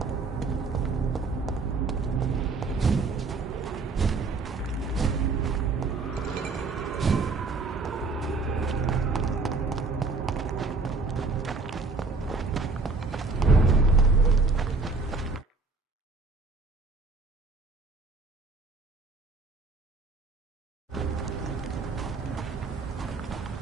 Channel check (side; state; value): left; quieter; 3.9 dB